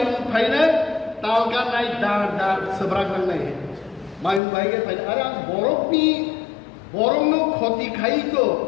फाइनाल तालका नाइ दार दार सबराक नाइ मायूं भाइगे फाइल अरे बरफनी बरमनो क्षति खाइ तो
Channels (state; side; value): drops out; right; at 4.4 s